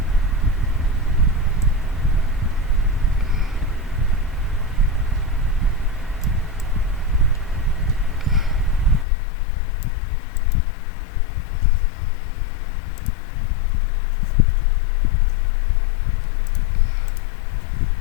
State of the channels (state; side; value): drops out; right; at 9.1 s